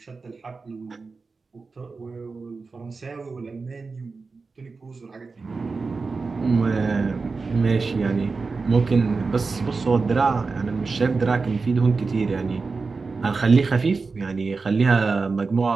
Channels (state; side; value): quieter; left; 4.3 dB